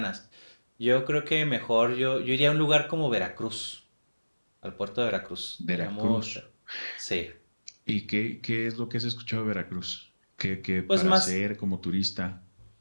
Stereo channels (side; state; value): both; inverted; correlation -1.00